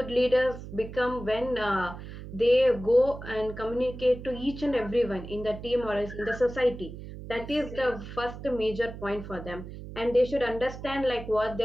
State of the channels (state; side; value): noise; right; hum, 12 dB below the sound